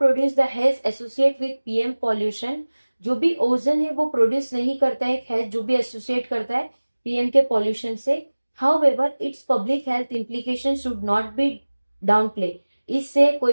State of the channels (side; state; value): both; inverted; correlation -1.00